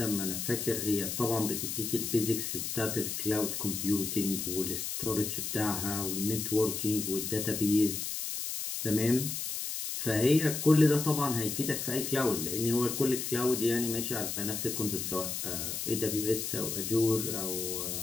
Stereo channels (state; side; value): noise; left; hiss, 3 dB below the sound